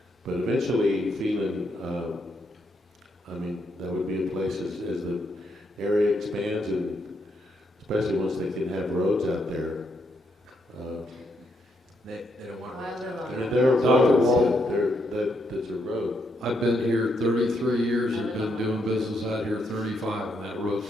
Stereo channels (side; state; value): both; normal; correlation 0.77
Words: But eventually, Phelan, I mean, that would be a place as the area expands, and especially once they can have roads out there. They don't want I live on And that. there are Dr. roads, Wall. there's a road. I've been here 33 years and been doing business out here 35, and that